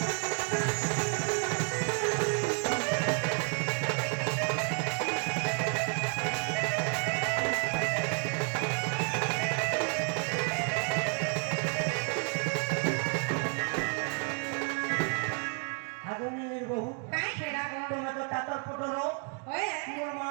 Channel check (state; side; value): quieter; left; 38.5 dB